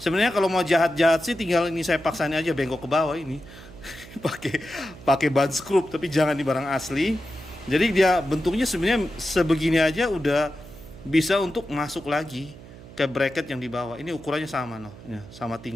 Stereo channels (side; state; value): right; noise; hum, 18 dB below the sound